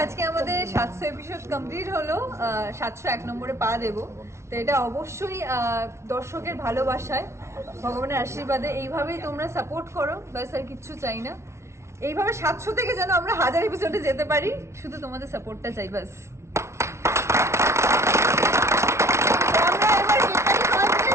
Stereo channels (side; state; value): left; late; 0.13 ms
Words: আজকে আমাদের 700 এপিসোড কমপ্লিট হলো। 701 নম্বরে পা দেবো। তো এটা অবশ্যই দর্শকের ভালোবাসায়, ভগবানের আশীর্বাদে এইভাবেই তোমরা সাপোর্ট করো, ব্যাস আর কিচ্ছু চাই না। এইভাবে 700 থেকে যেন আমরা 1000 এপিসোডে যেতে পারি, শুধু তোমাদের সাপোর্টটা চাই ব্যাস।